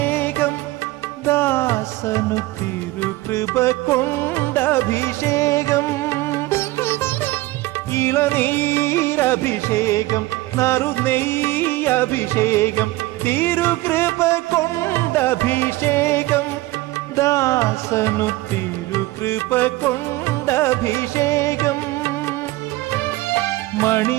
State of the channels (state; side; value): quieter; left; 18.9 dB